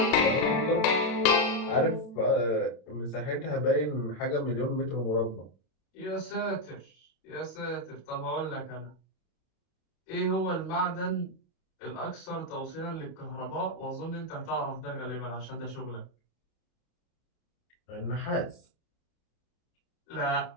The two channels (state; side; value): late; right; 32 ms